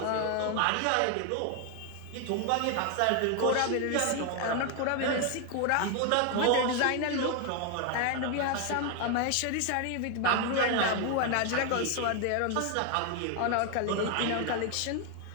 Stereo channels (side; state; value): both; different; correlation 0.01